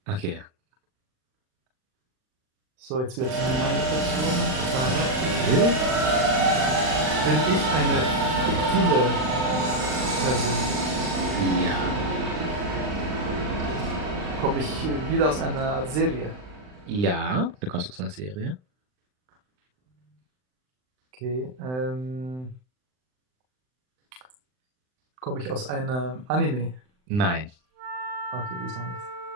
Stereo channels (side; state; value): left; late; 39 ms